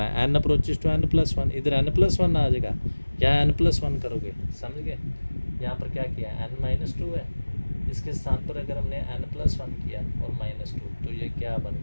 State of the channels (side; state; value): both; inverted; correlation -1.00